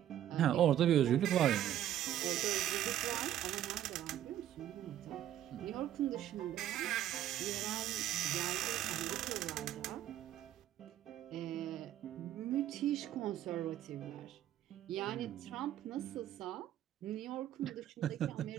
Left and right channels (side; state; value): left; quieter; 11.9 dB